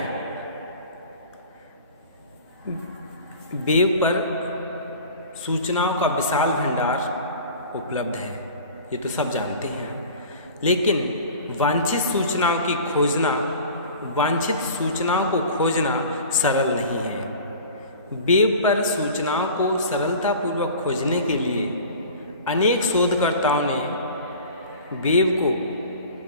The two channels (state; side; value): inverted; both; correlation -0.41